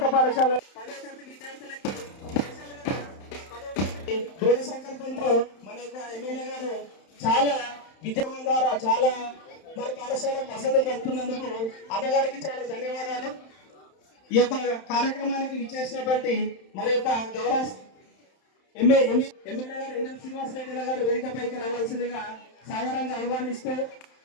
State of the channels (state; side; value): late; right; 31 ms